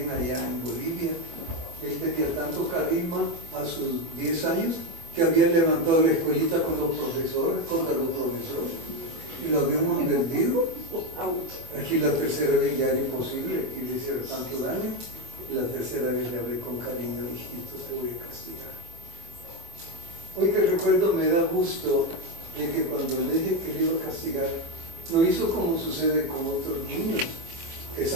allá en Bolivia. Él tenía tanto carisma a sus 10 años que había levantado la escuelita con los profesores, contra los profesores, y lo habíamos vendido. Aquí la tercera vez ya era imposible que le hiciera tanto daño, y la tercera vez le hablé con cariño, hijito, te voy a castigar. Hoy que recuerdo me da gusto de que cuando le dije que le iba a castigar, lo hizo como sucede con otros niños, que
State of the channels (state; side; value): late; left; 24 ms